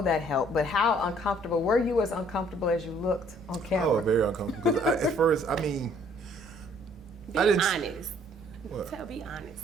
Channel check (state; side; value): normal; both; correlation 0.60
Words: that helped, but how uncomfortable, were you as uncomfortable as you looked on camera? Oh, very uncomfortable. Because at first, I mean, Be I didn't. honest. What? Be